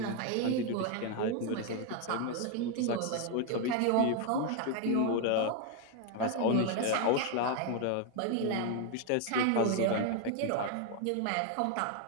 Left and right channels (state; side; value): different; both; correlation 0.01